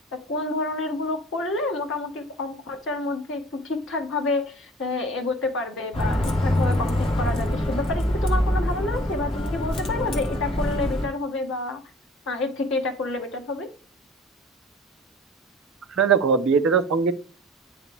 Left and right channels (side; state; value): both; normal; correlation 0.46